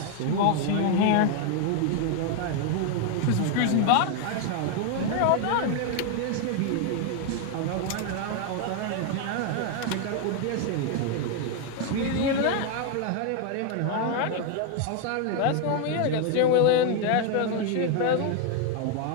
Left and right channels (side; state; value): both; different; correlation 0.00